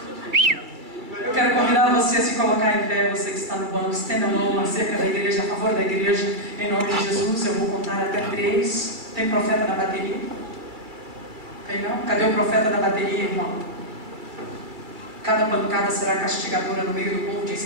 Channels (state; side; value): late; left; 2.3 ms